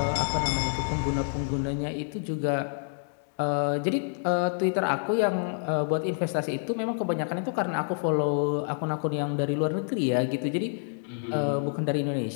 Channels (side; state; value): right; silent; digital silence